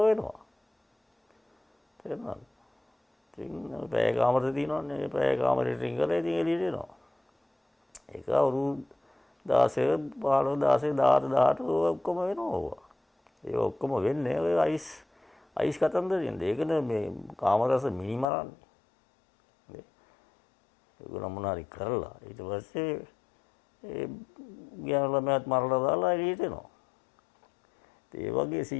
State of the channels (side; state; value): right; drops out; at 18.2 s